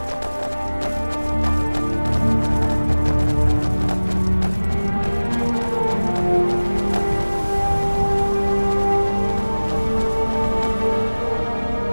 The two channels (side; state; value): both; inverted; correlation -1.00